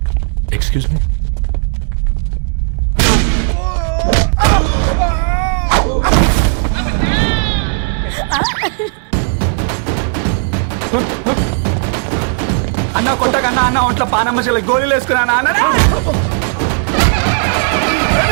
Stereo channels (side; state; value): left; silent; 62 dB below the other